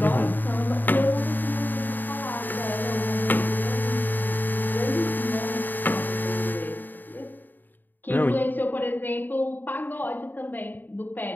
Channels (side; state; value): right; late; 0.090 ms